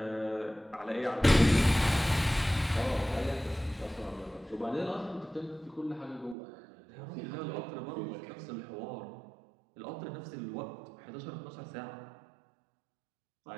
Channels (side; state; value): left; drops out; at 6.4 s